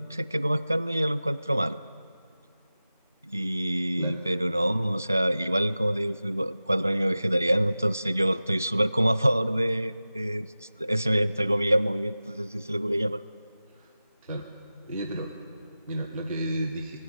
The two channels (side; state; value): both; inverted; correlation -0.95